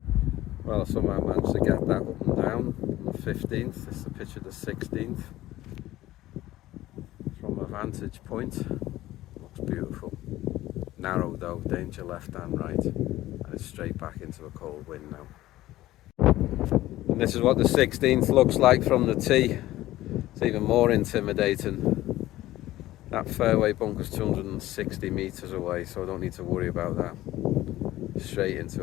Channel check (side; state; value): right; quieter; 15.7 dB